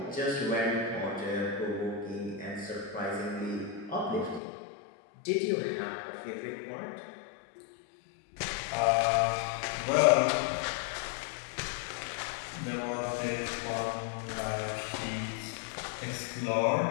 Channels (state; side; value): drops out; right; at 4.4 s